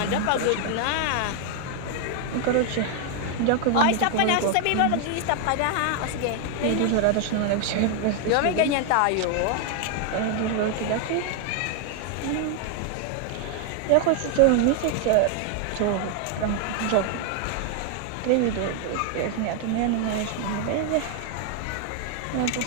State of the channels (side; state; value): both; different; correlation 0.00